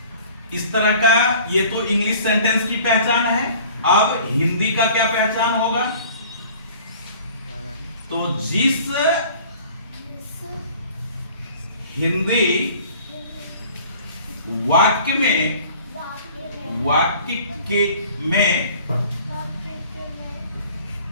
इस तरह का, ये तो इंग्लिश सेंटेंस की पहचान है। अब हिंदी का क्या पहचान होगा? तो जिस हिंदी वाक्य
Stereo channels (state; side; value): inverted; both; correlation -0.49